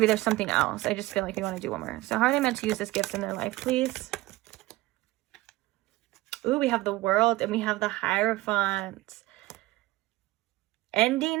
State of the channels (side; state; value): left; quieter; 18.6 dB